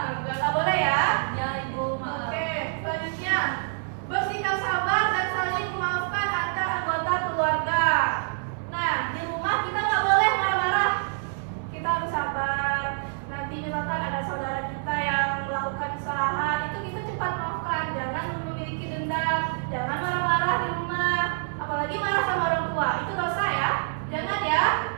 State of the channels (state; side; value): silent; left; digital silence